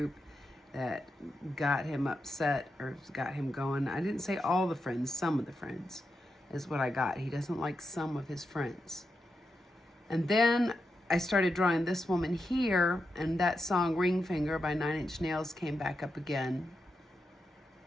that got him upset or got him going. I didn't say all the friends, some of the friends is what I got. He doesn't like some of his friends. And then I started drawing this woman here, and that song Ring Finger by 9 Inch Nails came back up again.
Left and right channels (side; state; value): both; normal; correlation 0.87